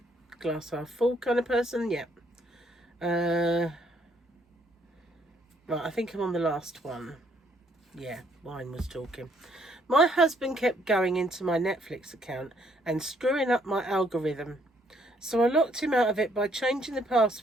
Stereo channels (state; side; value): normal; both; correlation 0.69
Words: Glass half full kind of person. Yeah. Right, I think I'm on the last one. Yeah, wine was talking. My husband kept going into my Netflix account and screwing up my algorithm. So I locked him out of it by changing the